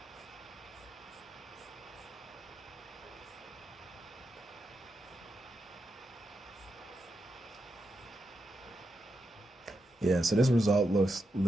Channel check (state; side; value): normal; both; correlation 0.85